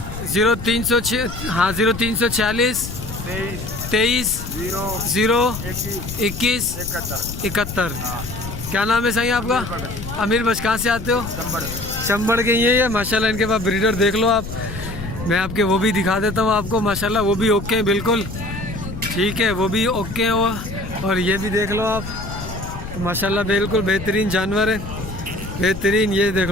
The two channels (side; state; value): left; noise; rumble, 9 dB below the sound